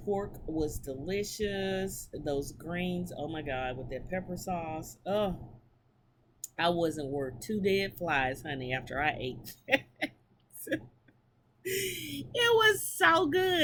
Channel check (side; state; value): both; identical; correlation 1.00